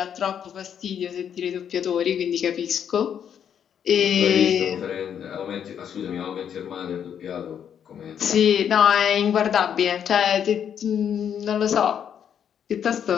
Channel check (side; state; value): right; quieter; 8.6 dB